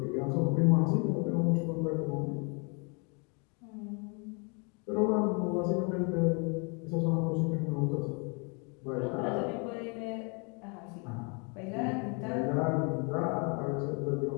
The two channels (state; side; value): quieter; right; 34.5 dB